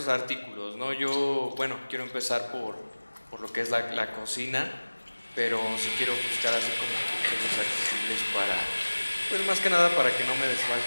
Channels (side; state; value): both; inverted; correlation -1.00